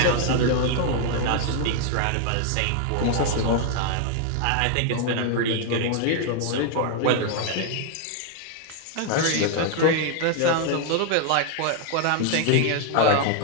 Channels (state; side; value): different; both; correlation 0.00